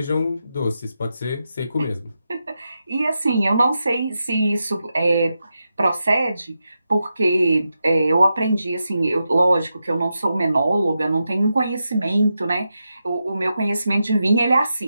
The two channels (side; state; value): both; inverted; correlation -0.88